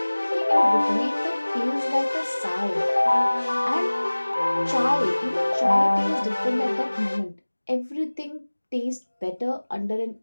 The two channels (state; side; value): inverted; both; correlation -1.00